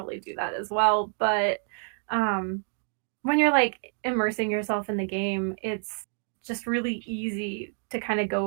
do that as well. But when you're immersing yourself in the game, it's just really easy to kind of go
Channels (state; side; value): silent; left; 57 dB below the other